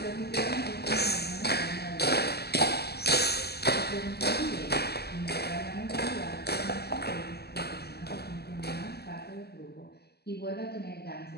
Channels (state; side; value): late; right; 0.47 ms